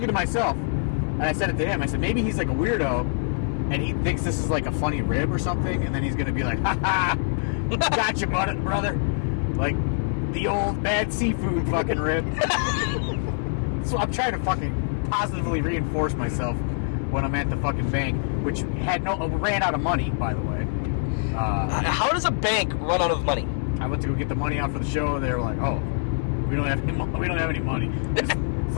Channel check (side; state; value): right; silent; digital silence